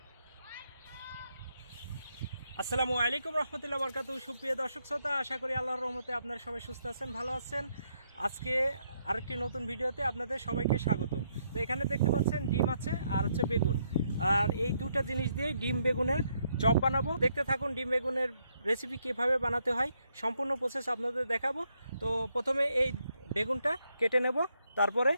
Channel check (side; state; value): both; inverted; correlation -0.75